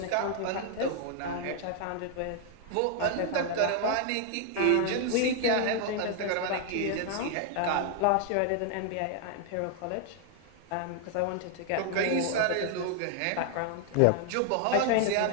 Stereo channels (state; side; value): different; both; correlation 0.00